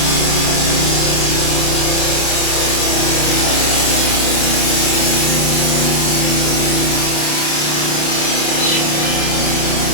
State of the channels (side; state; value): right; late; 27 ms